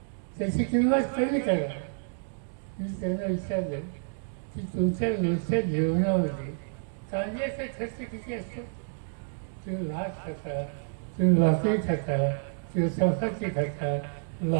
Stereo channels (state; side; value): silent; left; digital silence